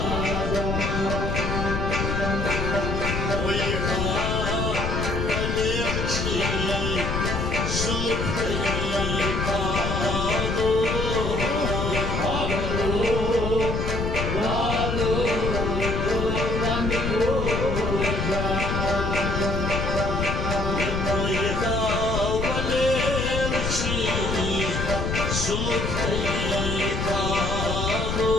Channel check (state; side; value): noise; left; rumble, 1 dB below the sound